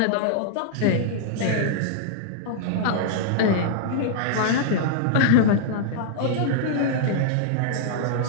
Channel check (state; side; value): different; both; correlation -0.01